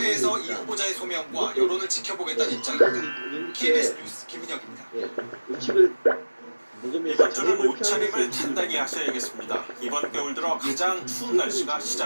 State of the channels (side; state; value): both; inverted; correlation -1.00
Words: 이 후보자의 소명과 여론을 지켜보겠다는 입장입니다. KBS 뉴스 김민혁입니다. 이번 주는 옷차림을 단단히 하셔야겠습니다. 이번 겨울 들어 가장 추운 날씨가